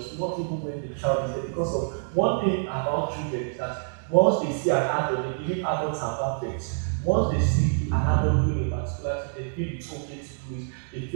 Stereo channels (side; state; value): left; silent; digital silence